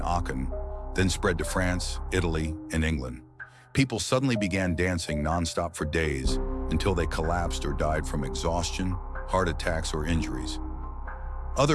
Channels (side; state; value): both; identical; correlation 1.00